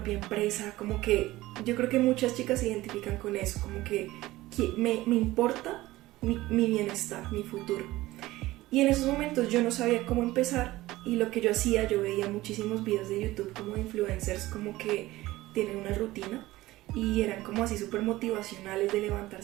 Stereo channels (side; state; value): left; quieter; 17.6 dB